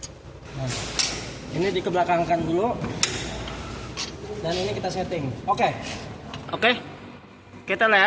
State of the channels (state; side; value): identical; both; correlation 1.00